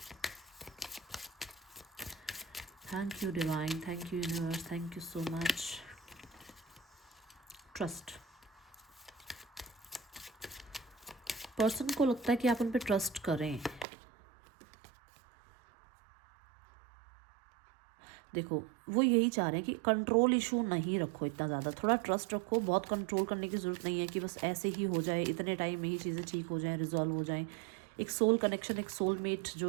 thank you divine, thank you universe, thank you so much. Trust, person को लगता है कि आप उन पर ट्रस्ट करें। देखो, वो यही चाह रहे हैं कि कंट्रोल इशू नहीं रखो इतना ज़्यादा, थोड़ा ट्रस्ट रखो। बहुत कंट्रोल करने की ज़रूरत नहीं है कि बस ऐसे ही हो जाए, इतने टाइम में ही चीज़ें ठीक हो जाएं, रिजॉल्व हो जाएं। एक सोल कनेक्शन, एक सोलमेट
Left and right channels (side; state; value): left; drops out; at 13.9 s